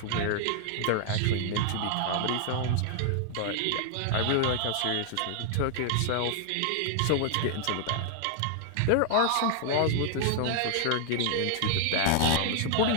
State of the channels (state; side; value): different; both; correlation 0.00